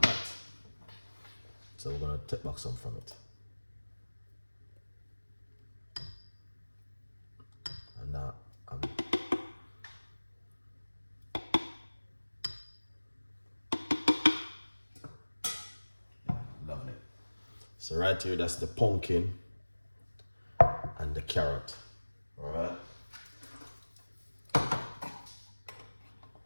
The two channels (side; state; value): both; inverted; correlation -1.00